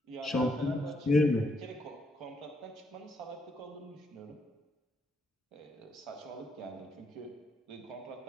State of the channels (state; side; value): normal; both; correlation 0.76